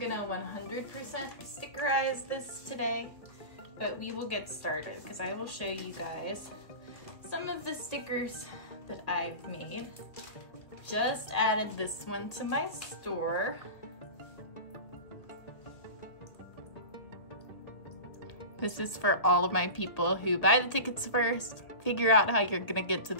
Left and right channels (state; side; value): late; right; 1.9 ms